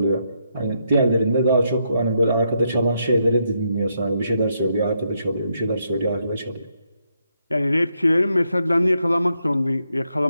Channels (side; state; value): both; inverted; correlation -0.79